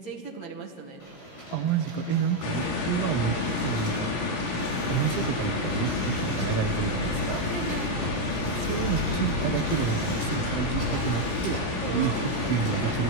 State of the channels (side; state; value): right; late; 17 ms